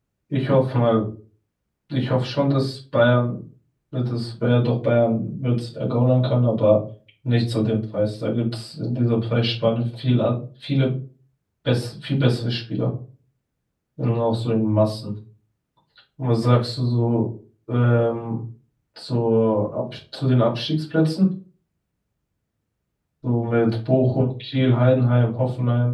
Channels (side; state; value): both; identical; correlation 1.00